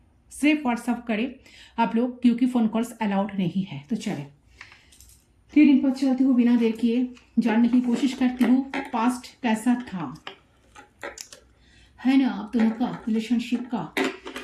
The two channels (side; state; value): both; identical; correlation 1.00